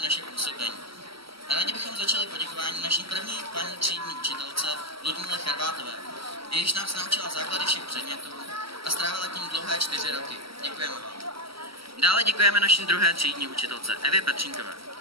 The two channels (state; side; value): late; left; 0.75 ms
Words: působení. Rádi bychom začali poděkování naší první paní třídní učitelce Ludmile Charvátové, jejíž nás naučila základy všech předmětů a strávila tím dlouhé 4 roky. Děkujeme vám. Dále děkujeme naší druhé třídní učitelce Evě Petřínkové,